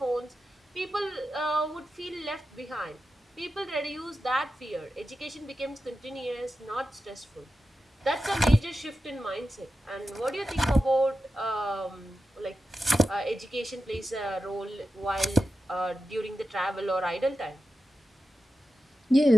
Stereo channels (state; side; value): normal; both; correlation 0.91